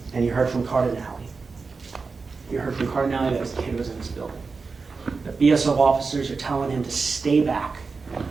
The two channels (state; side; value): quieter; left; 4.5 dB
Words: And you heard from Cardinale. You heard from Cardinale that his kid was in this building. The BSO officers are telling him to stay back